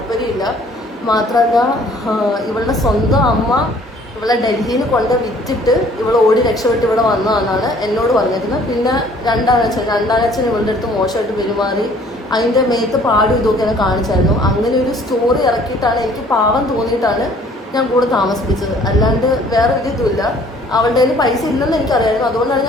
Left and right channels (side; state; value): both; normal; correlation 0.56